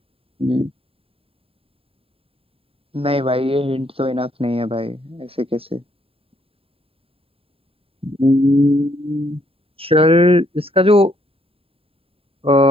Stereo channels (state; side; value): late; left; 0.27 ms